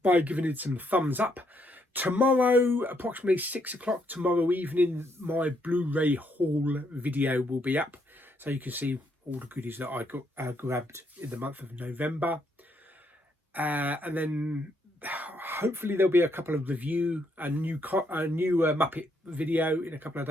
by giving it some thumbs up. Tomorrow, approximately 6 o'clock tomorrow evening, my Blu-ray haul video will be up. So you can see all the goodies that I got grabbed in the month of November. And then hopefully there'll be a couple of review, a new Muppet video in a couple of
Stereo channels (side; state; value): both; normal; correlation 0.74